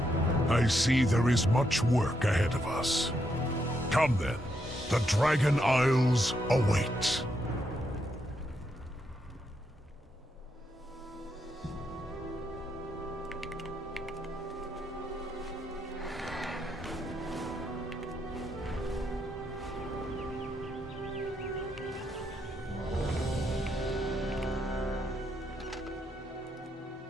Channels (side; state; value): both; normal; correlation 0.79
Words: I see there is much work ahead of us. Come then, the Dragon Isles await.